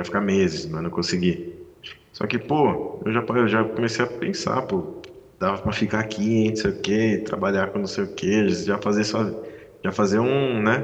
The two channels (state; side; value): identical; both; correlation 1.00